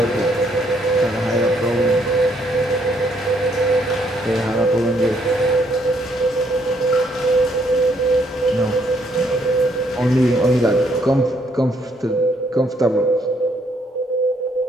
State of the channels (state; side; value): normal; both; correlation 0.70